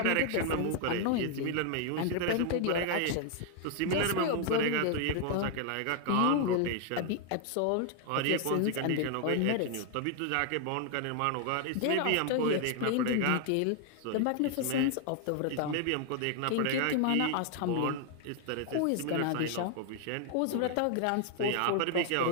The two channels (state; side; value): different; both; correlation 0.00